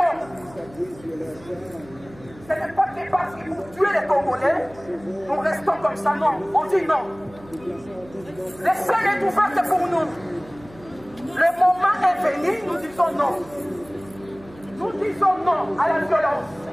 Ce n'est pas que parce qu'ils vont tuer les Congolais, nous restons comme ça, non. On dit non. Le ciel est ouvert pour nous. Le moment est venu, nous disons non. Nous disons non à la violence.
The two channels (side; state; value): right; noise; hum, 22 dB below the sound